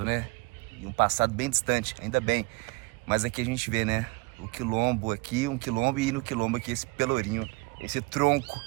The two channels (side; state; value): left; quieter; 24.3 dB